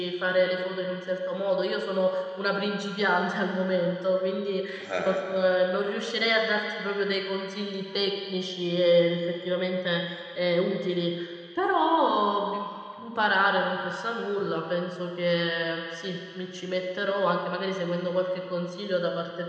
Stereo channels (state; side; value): identical; both; correlation 1.00